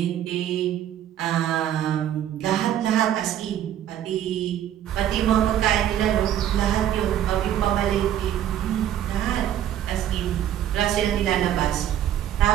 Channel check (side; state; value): left; quieter; 11.0 dB